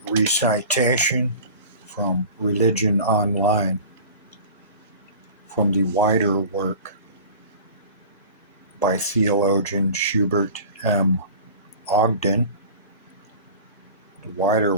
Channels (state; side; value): inverted; both; correlation -0.39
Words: recitation from Religion Online from the wider work by theologian Schubert M. Ogden. The wider